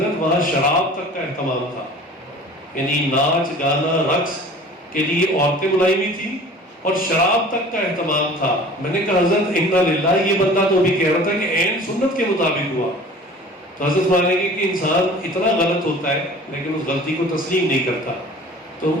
وہاں شراب تک کا اہتمام تھا، یعنی ناچ گانا رقص کے لیے عورتیں بلائی ہوئی تھی اور شراب تک کا اہتمام تھا۔ میں نے کہا حضرت انا للہ، یہ بندہ تو بھی کہہ رہا تھا کہ عین سنت کے مطابق ہوا۔ تو حضرت مانے گے کہ انسان اتنا غلط ہوتا ہے لیکن اس غلطی کو تسلیم نہیں کرتا۔ تو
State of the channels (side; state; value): both; normal; correlation 0.44